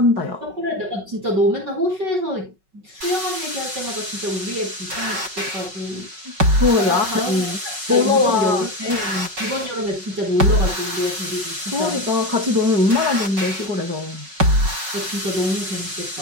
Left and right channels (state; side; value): late; left; 5.3 ms